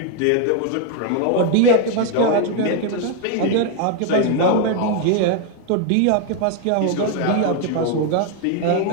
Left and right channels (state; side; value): different; both; correlation 0.01